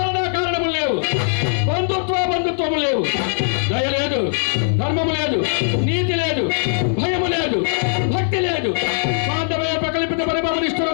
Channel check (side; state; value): right; silent; digital silence